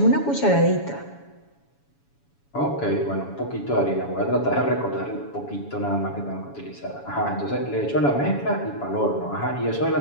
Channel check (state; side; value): late; right; 7.1 ms